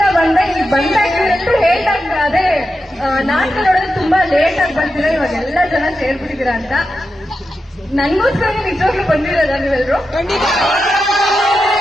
ಬಂದೆ. ಇಲ್ಲಿ ಬಂದಾಗ ಇವರೆಲ್ಲರೂ ಹೇಳ್ದಾಗ ಅದೇ ನಾಟಕ ನೋಡೋದು ತುಂಬಾ ಲೇಟ್ ಆಗಿ ಬರ್ತೀರಾ, ಇವಾಗ ಎಲ್ಲ ಜನ ಸೇರ್ಬಿಟ್ಟಿದ್ದೀರಾ ಅಂತ. ನನ್ಗೋಸ್ಕರ ನಿಜವಾಗ್ಲೂ ಬಂದಿರೋದ ನೀವೆಲ್ಲರೂ?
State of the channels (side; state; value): both; normal; correlation 0.89